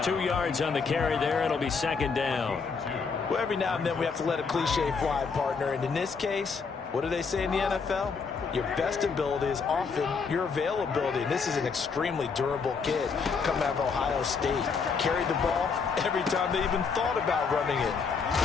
2 yards on the carry there. It'll be 2nd down. Well, every now and then we have to let a cliche fly, partner. And in this case, what do they say in the NFL? Your best ability is often your availability. And this is an extremely durable kid coming out of Ohio State. Carried the ball every time they even thought about running it.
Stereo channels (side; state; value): right; quieter; 5.3 dB